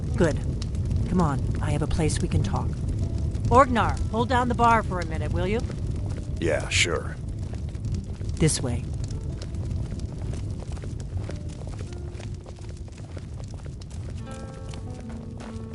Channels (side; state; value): both; identical; correlation 1.00